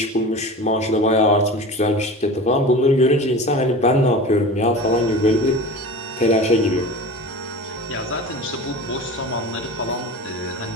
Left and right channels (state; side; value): normal; both; correlation 0.34